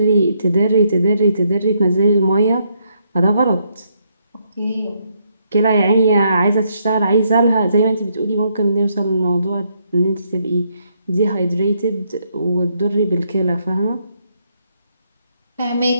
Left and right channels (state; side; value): inverted; both; correlation -0.75